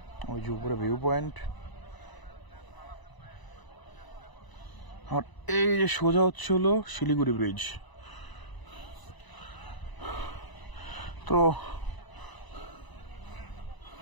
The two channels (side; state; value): right; late; 1.0 ms